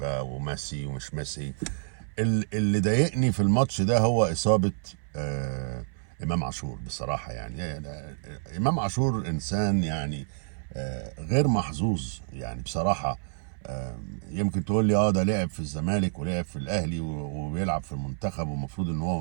وميسي ومش ميسي. اللي ضايقني في الماتش ده هو اصابه امام عاشور بصراحه. يعني امام عاشور انسان يعني غير محظوظ يعني بصراحه. يمكن تقول لي ده لعب في الزمالك ولعب في الاهلي وبيلعب في المنتخب ومفروض ان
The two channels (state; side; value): silent; left; 59 dB below the other